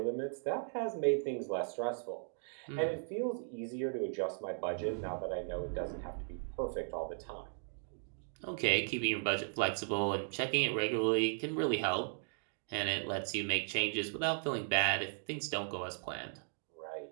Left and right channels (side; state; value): left; silent; digital silence